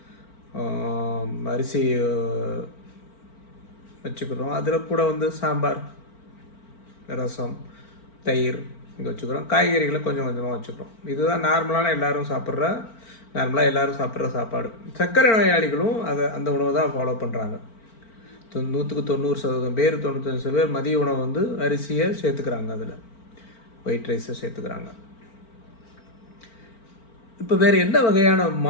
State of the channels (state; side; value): late; right; 4.4 ms